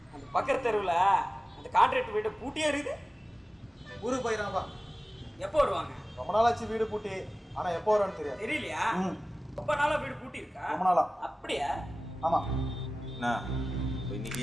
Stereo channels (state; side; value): normal; both; correlation 0.96